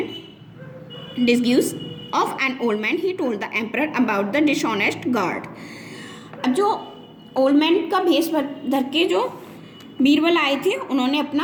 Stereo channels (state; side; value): identical; both; correlation 1.00